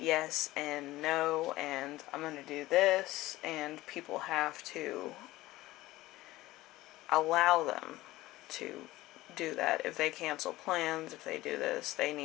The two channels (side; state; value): right; quieter; 17.6 dB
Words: and no, and I'm going to do this, and people have to allow them to do that. If they cancel plans, if they do this, they